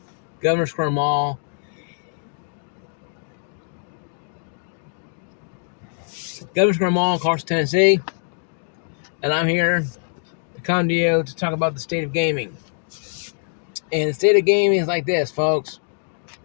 Governor Square Mall. Governor Square Mall, Clarkston, Tennessee. And I'm here to come to you to talk about the state of gaming. And the state of gaming is like this, folks.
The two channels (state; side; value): silent; right; digital silence